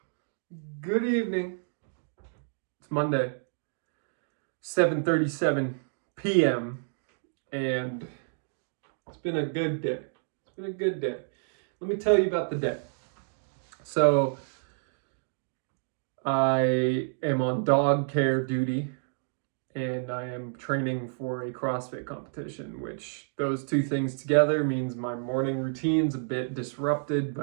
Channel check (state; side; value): silent; left; digital silence